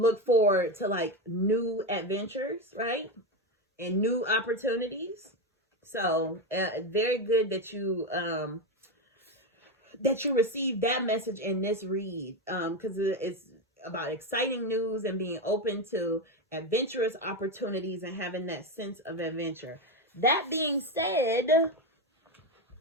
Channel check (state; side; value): normal; both; correlation 0.13